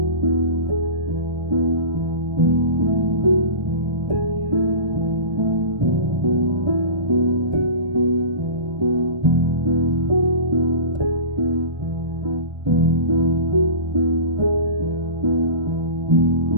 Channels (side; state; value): left; late; 1.3 ms